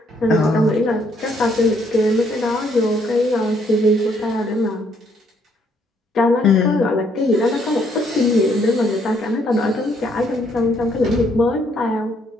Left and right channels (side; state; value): both; normal; correlation 0.69